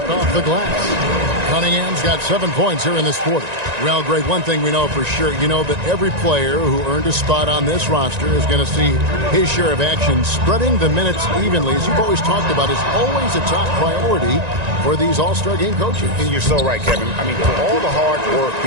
off the glass. Cunningham's got 7 points here in this quarter. Well, Greg, one thing we know for sure, you know that every player who earned a spot on this roster is going to see his share of action. Spreading the minutes evenly, as you've always talked about, is always a top priority for these All-Star game coaches. And you're so right, Kevin. I mean, for all the hard work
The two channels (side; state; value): left; late; 1.9 ms